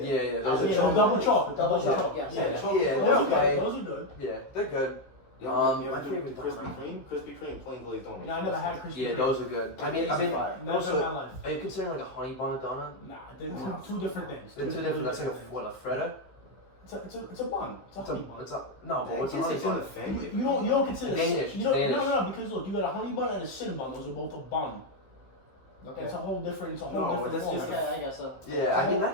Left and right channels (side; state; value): right; late; 15 ms